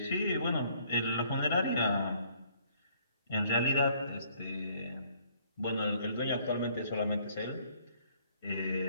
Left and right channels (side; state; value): both; inverted; correlation -0.62